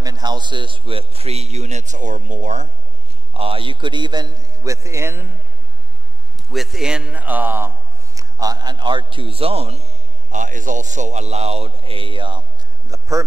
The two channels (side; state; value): left; noise; hum, 23 dB below the sound